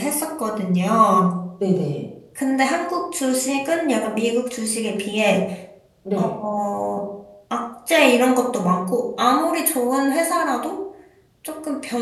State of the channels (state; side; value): identical; both; correlation 1.00